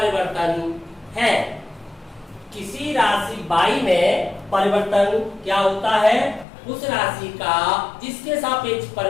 है। किसी राशि बाई में परिवर्तन क्या होता है? उस राशि का जिसके सापेक्ष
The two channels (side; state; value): right; drops out; at 6.5 s